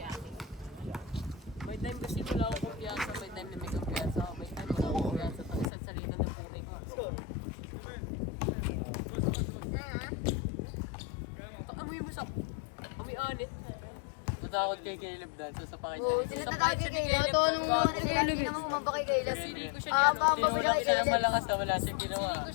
May time kasi wala akong kumpiyansa. May time na may kumpiyansa ako. May time wala akong kumpiyansa. Pag isang salita ng puti ko. Amoy mo sa... Amoy anit. Matakot kay Caleb dahil sa pakisya. Oo, sila tatawag kay Kayla. Ito anong mga sila, hindi naman kumamba kay Kayla. Pamba ba siya kay Kaya Kayla? malakas na wala siyang ginawa. Ko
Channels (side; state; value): right; drops out; at 5.7 s